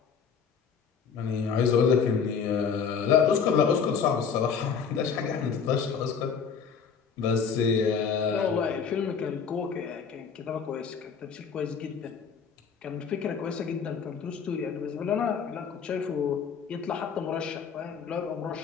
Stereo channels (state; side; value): quieter; right; 6.4 dB